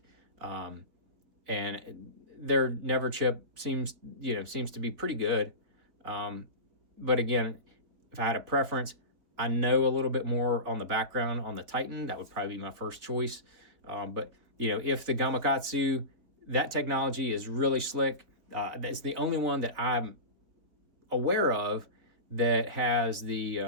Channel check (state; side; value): late; left; 4.1 ms